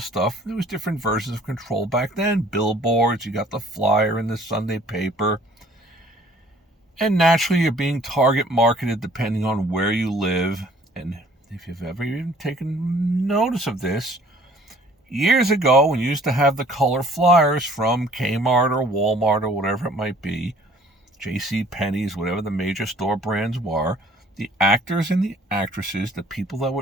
stuff. There was different versions of control back then. Billboards, you got the flyer in the Sunday paper. And naturally, you're being target marketed depending on where you live. And if you've ever even taken notice of this, years ago, when you used to have the color flyers from Kmart or Walmart or whatever it might be, J.C. Penney's, whatever the major store brands were, the actors and the actresses, the people that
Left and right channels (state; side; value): normal; both; correlation 0.55